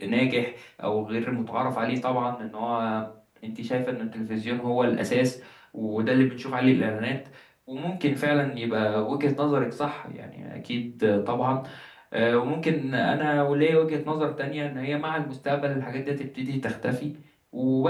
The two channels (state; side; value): identical; both; correlation 1.00